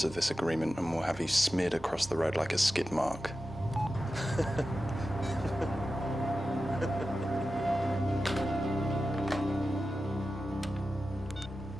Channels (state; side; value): normal; both; correlation 0.93